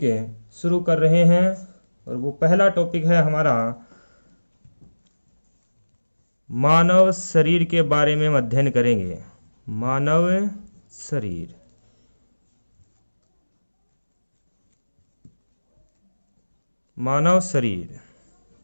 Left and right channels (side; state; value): both; inverted; correlation -1.00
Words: शुरू कर रहे हैं और वो पहला टॉपिक है हमारा मानव शरीर के बारे में हम अध्ययन करेंगे। मानव शरीर। मानव शरीर।